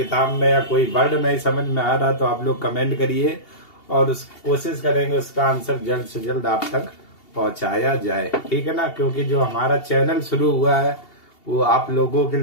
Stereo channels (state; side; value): late; right; 2.8 ms